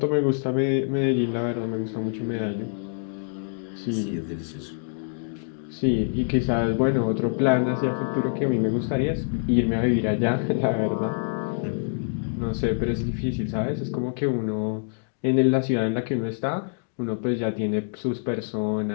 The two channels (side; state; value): right; silent; digital silence